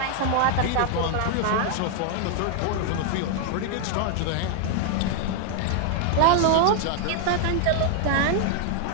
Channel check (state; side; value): different; both; correlation 0.00